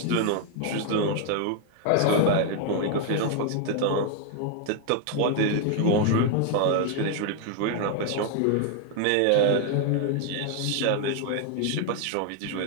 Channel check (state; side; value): different; both; correlation 0.00